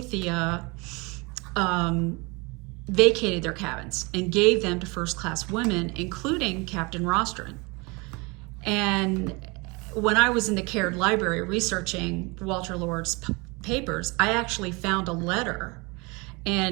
vacated their cabins and gave them to first-class women, including Captain Rostron. And when I was in the Caird Library researching Walter Lord's papers, I actually found a letter.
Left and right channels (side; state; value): left; quieter; 27.5 dB